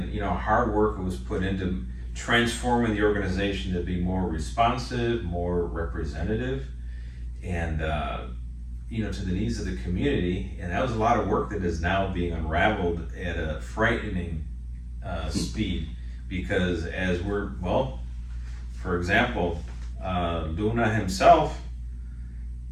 hard work was put into transforming the organization to be more responsive, more representative, and, to the needs of the community. And that was a lot of work that is now being unraveled at a frightening speed, because for example, Luna himself,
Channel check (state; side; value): identical; both; correlation 1.00